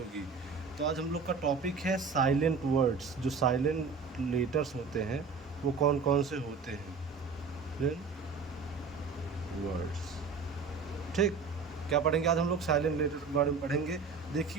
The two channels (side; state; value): left; quieter; 4.9 dB